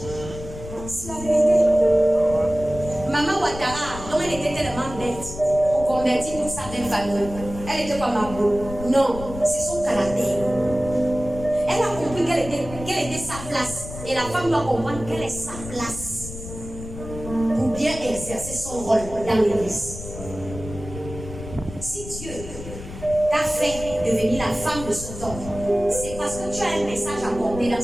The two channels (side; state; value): left; noise; rumble, 11 dB below the sound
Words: C'est la vérité. Maman Ouattara, dont elle était tellement bête, on convertit toute sa belle famille. Elle était pas Mabo. Non, c'est son caractère. Elle a compris quelle était sa place. Et la femme doit comprendre quelle est sa place. bien exercer son rôle dans l'église. Si Dieu t'a fait devenir la femme de son homme, c'est parce que tu as un message à porter dans